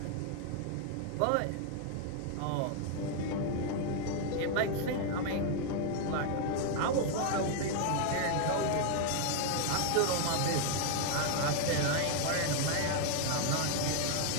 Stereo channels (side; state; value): both; different; correlation 0.00